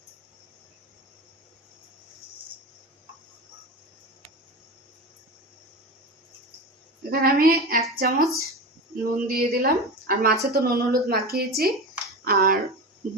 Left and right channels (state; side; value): normal; both; correlation 0.26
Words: এখানে আমি 1 চামচ নুন দিয়ে দিলাম, আর মাছে তো নুন হলুদ মাখিয়েছি, আর